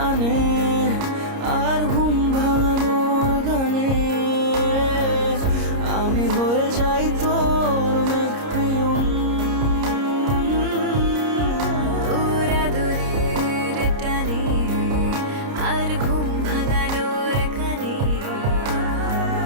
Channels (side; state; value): left; late; 30 ms